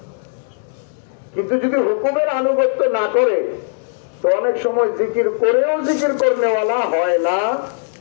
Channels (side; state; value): right; silent; 66 dB below the other